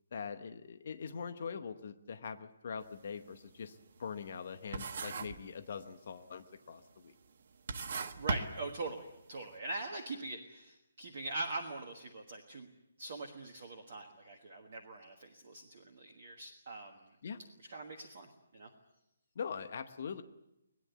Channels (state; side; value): inverted; both; correlation -0.73